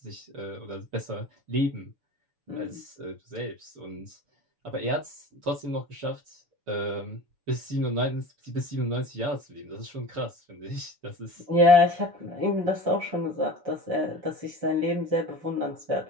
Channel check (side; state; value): left; late; 7.0 ms